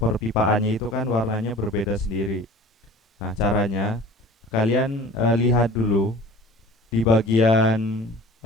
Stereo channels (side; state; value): both; normal; correlation 0.44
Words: itu kan warnanya berbeda sendiri. Nah, caranya kalian lihat dulu di bagian